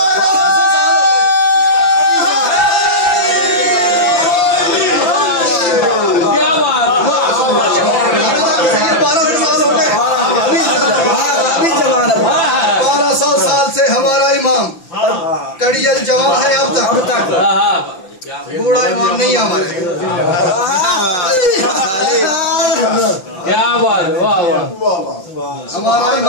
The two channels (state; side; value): late; right; 5.9 ms